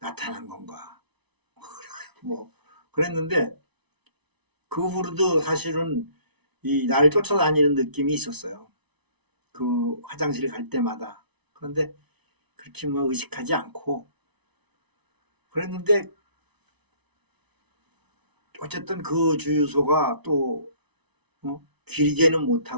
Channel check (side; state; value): left; late; 0.99 ms